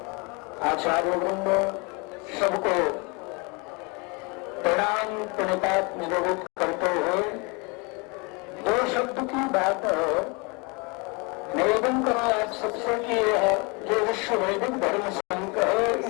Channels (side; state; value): right; quieter; 30.0 dB